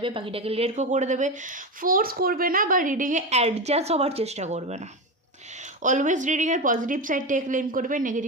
বাকিটাকে লেট গো করে দেবে। ফোর্স করবে না বা রিডিংয়ে অ্যাডজাস্ট হওয়ার চেষ্টা করবে না। অলওয়েজ রিডিংয়ের পজিটিভ সাইডটাকে ক্লেম করবে,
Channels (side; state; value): both; normal; correlation 0.17